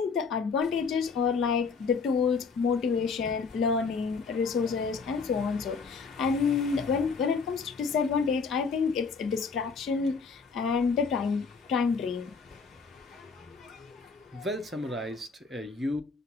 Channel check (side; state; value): right; quieter; 5.0 dB